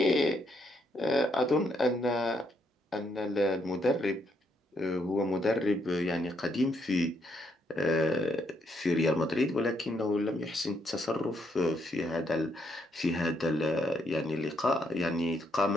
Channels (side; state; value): both; normal; correlation 0.75